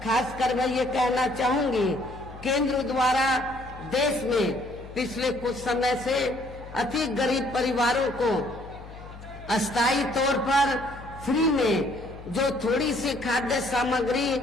खासकर मैं ये कहना चाहूंगी, केंद्र द्वारा देश में पिछले कुछ समय से अति गरीब परिवारों को अस्थायी तौर पर फ्री में जो थोड़ी सी खाद्य सामग्री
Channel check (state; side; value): noise; left; hum, 16 dB below the sound